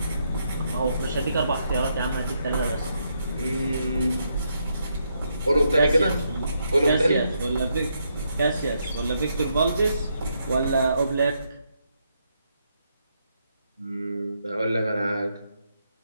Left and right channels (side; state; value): both; inverted; correlation -0.79